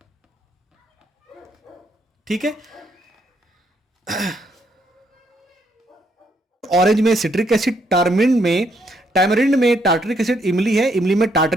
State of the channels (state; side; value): normal; both; correlation 0.73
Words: ठीक है, ऑरेंज में सिट्रिक एसिड, टैमरिंड में टार्टरिक एसिड, इमली है, इमली में